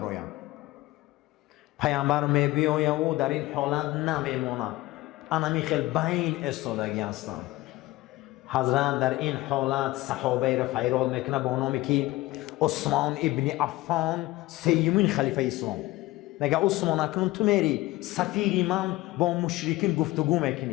پیامبر میبیاید او در این حالت نمیمونه، انمی خیلی بین استادگی هستند. حضرت در این حالت صحابه را فیراد میکنه با نامی که عثمان ابن عفان سیمین خلیفه اسلام. میگه عثمان اکنون تو میری سفیری من با مشرکین گفتگو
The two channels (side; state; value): right; quieter; 18.8 dB